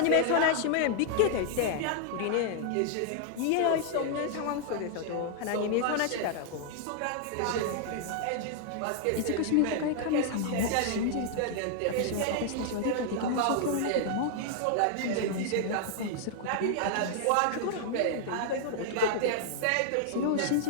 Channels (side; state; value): both; different; correlation 0.00